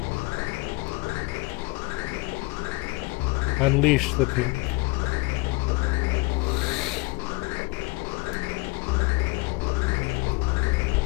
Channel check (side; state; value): right; quieter; 24.4 dB